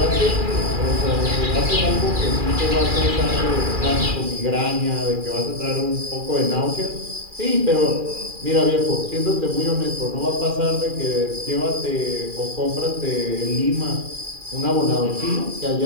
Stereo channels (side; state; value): left; late; 2.4 ms